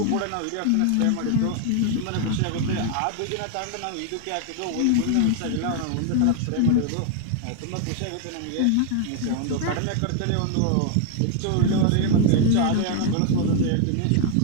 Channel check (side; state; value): both; different; correlation 0.00